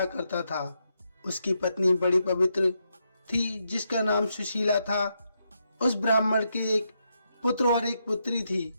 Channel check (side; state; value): both; inverted; correlation -0.82